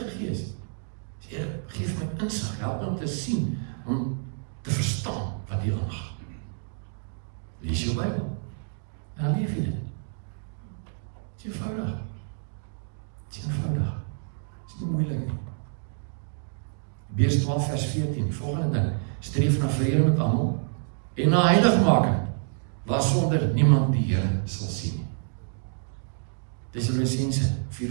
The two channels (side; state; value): left; silent; digital silence